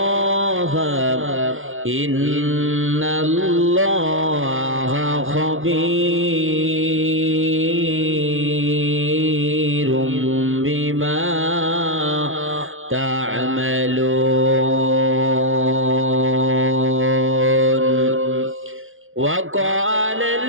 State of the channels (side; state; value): left; late; 0.59 ms